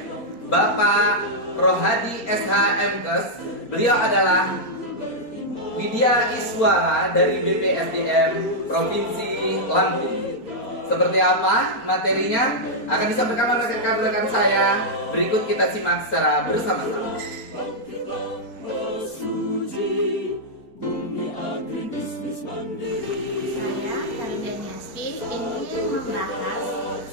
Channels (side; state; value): right; late; 4.3 ms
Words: Bapak Rohadi SHMKes. Beliau adalah Widya Iswara dari BPSDM Provinsi Lampung. Seperti apa materinya akan disampaikan oleh rekan-rekan saya. Berikut kita simak secara bersama-sama. Saya, Karina Nyaspi, ingin membahas